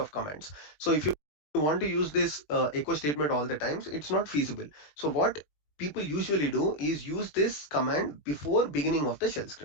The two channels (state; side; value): late; right; 20 ms